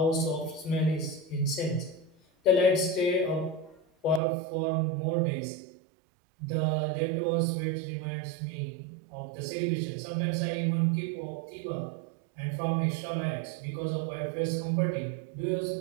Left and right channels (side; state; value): left; drops out; at 4.2 s